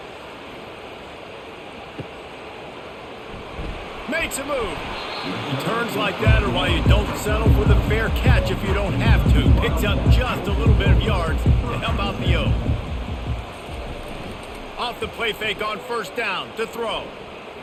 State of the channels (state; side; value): identical; both; correlation 1.00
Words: Makes a move. He turns like that, or why you don't settle for the fair catch if you don't have to. Picks up just a little bit of yards to help out the O. Off the play fake on 1st down to throw.